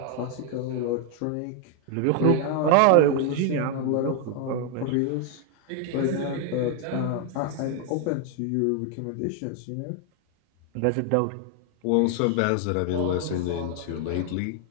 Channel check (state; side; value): different; both; correlation 0.00